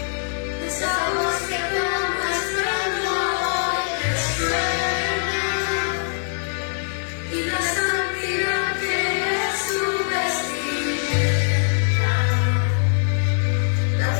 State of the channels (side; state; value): right; silent; digital silence